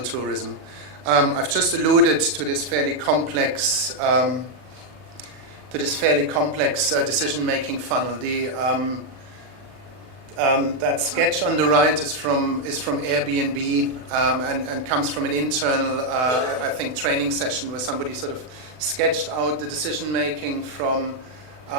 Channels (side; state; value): left; late; 40 ms